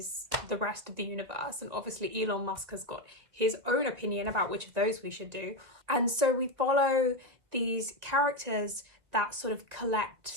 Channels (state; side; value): late; left; 1.9 ms